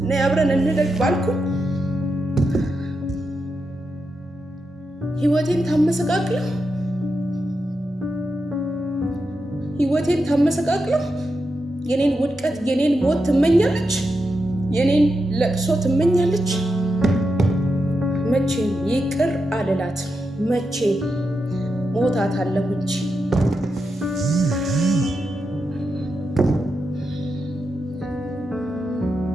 ነይ አብረን እንደግ ባልኩ ህይወቴን ታመሰቃቅለው የኔን ውድቀት የኔን ሞት ትመኛለች፣ የኔን ለቅሶ ትመኛለች። መቼም ይቅር አልላት፣ መቼ ሞታታለሁ እንጂ።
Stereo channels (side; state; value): both; normal; correlation 0.87